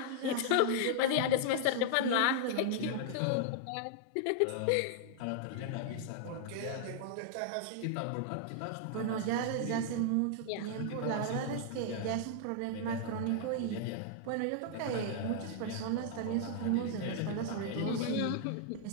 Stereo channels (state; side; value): different; both; correlation -0.01